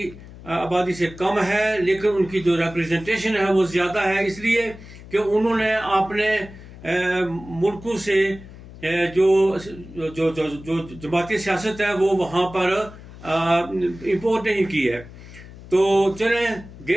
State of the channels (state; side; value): noise; left; hum, 17 dB below the sound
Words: آبادی سے کم ہے، لیکن ان کی جو ریپرزنٹیشن ہے وہ زیادہ ہے، اس لیے کہ انہوں نے اپنے ملکوں سے جو جماعتی سیاست ہے وہ وہاں پر امپورٹ نہیں کی ہے۔ تو چلیں،